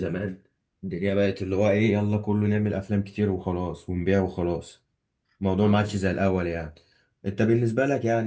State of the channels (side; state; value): both; identical; correlation 1.00